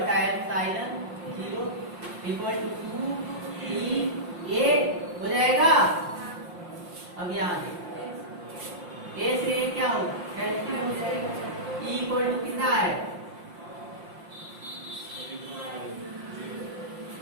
एप्सिलॉन 0 इक्वल टू 2 ई ए हो जाएगा। अब यहाँ देखिए ए से ए क्या होगा, कैंसिल हो जाएगा, ई इक्वल टू कितना है,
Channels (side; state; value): left; late; 5.7 ms